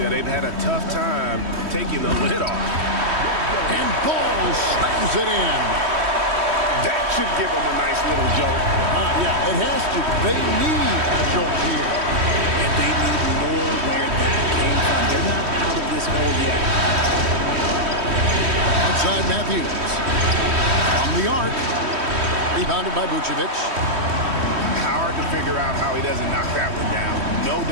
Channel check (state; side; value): late; left; 3.1 ms